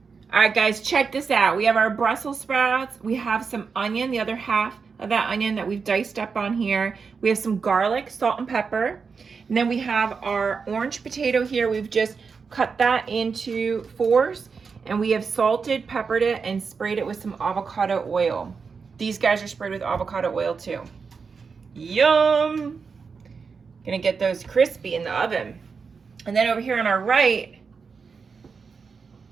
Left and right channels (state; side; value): quieter; left; 5.3 dB